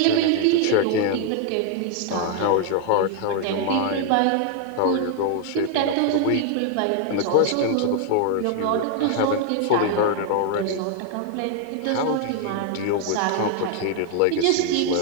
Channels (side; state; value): both; different; correlation 0.00